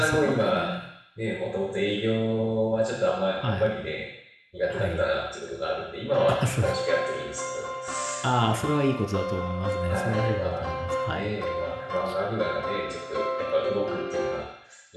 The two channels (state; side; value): identical; both; correlation 1.00